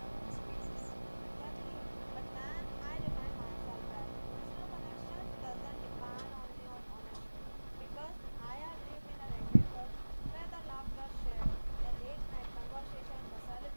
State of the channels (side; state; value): both; inverted; correlation -1.00